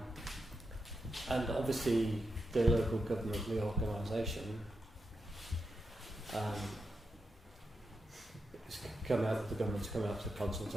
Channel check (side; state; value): both; normal; correlation 0.86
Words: obviously the local government reorganisation it's come out, the government's come out to